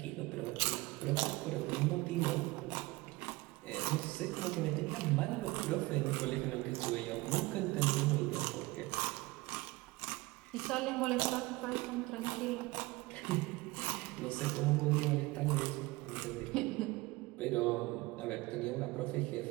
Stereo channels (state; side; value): quieter; left; 21.4 dB